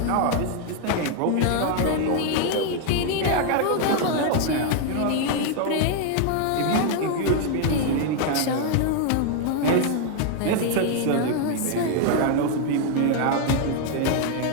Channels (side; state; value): both; different; correlation 0.00